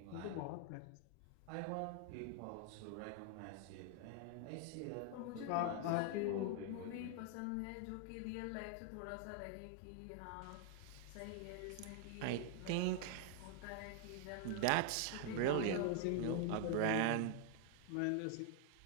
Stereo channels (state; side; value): different; both; correlation 0.00